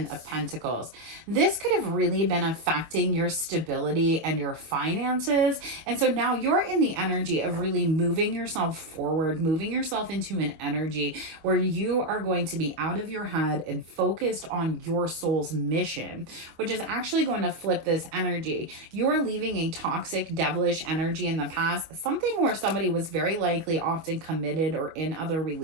of Pentacles. This could have really been affecting your stability and your finances. And so now you're in the energy of really moving yourself forward, moving yourself into an energy where you are going to be out of your head and focused on your soul's mission, which is actually going to flip this energy. You're leaving a toxic, devilish energy in the past, something where somebody was very likely often committed or in other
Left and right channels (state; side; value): late; left; 25 ms